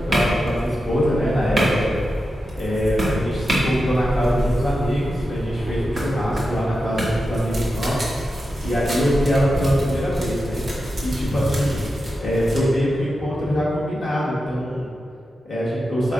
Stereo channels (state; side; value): normal; both; correlation 0.90